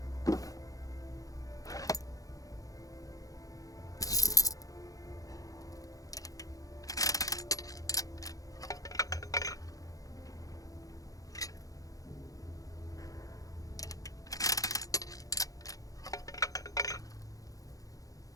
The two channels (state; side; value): late; right; 0.17 ms